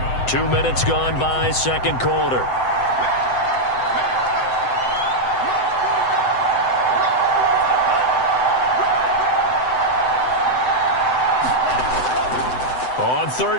Two minutes gone by, second quarter. On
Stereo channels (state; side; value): late; right; 7.9 ms